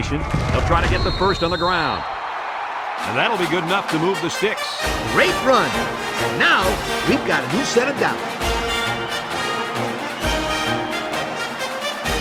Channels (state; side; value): identical; both; correlation 1.00